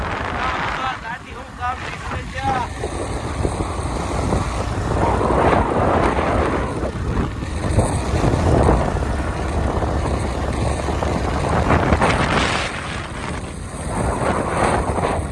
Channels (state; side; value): identical; both; correlation 1.00